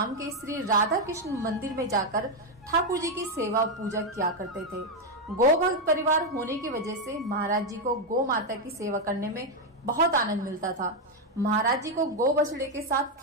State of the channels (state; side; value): normal; both; correlation 0.03